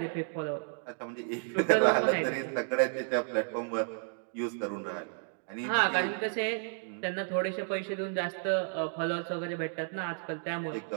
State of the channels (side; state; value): left; silent; 56 dB below the other